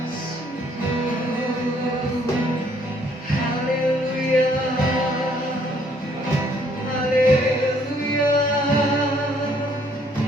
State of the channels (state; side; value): normal; both; correlation 0.65